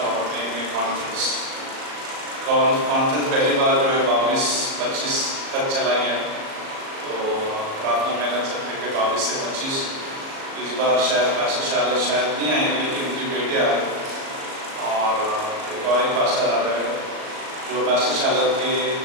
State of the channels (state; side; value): late; left; 37 ms